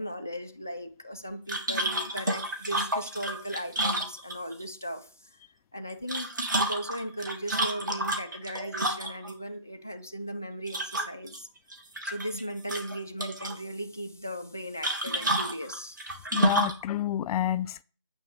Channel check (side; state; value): both; inverted; correlation -0.36